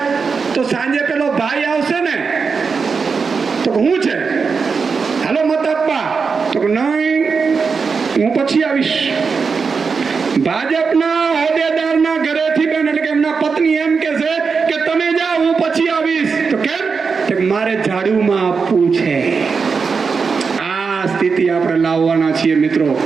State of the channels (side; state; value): left; quieter; 5.2 dB